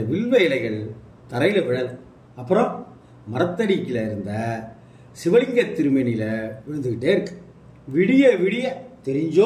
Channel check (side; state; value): both; identical; correlation 1.00